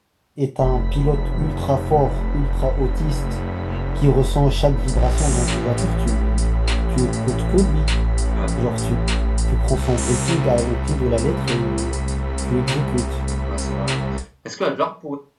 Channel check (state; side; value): identical; both; correlation 1.00